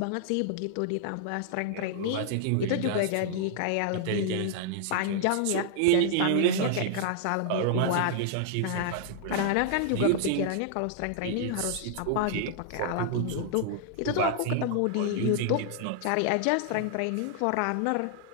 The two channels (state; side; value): different; both; correlation -0.01